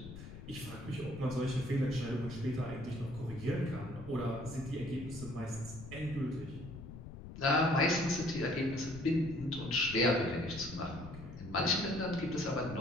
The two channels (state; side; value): noise; left; rumble, 12 dB below the sound